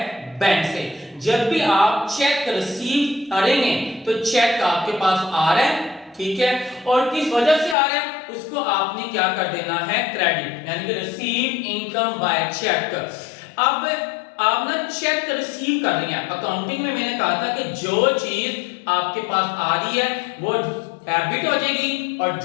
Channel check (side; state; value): right; drops out; at 7.8 s